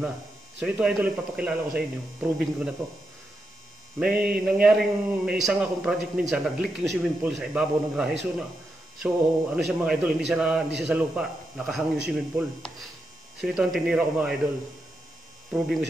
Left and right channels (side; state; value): both; normal; correlation 0.85